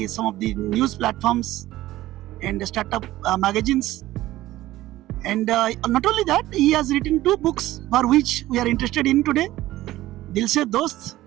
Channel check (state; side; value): quieter; left; 15.8 dB